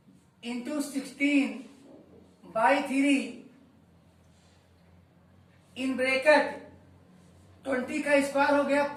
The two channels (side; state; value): both; identical; correlation 1.00